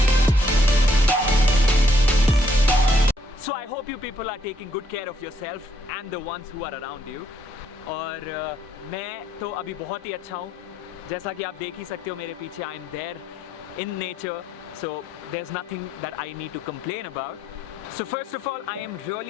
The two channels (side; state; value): both; normal; correlation 0.71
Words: So I hope you people are taking good care of yourself and the ones who are around you. और मैं तो अभी बहुत ही अच्छा हूँ, जैसा कि आप देख ही सकते हो मेरे पीछे. I am there in nature, so there's nothing that I need to complain about. So first of all, I am